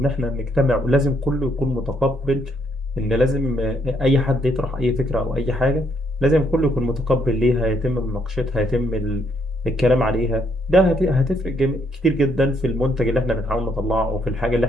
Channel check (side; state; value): both; normal; correlation 0.72